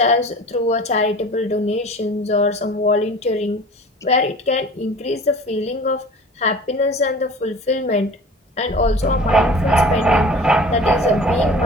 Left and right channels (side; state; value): both; normal; correlation 0.41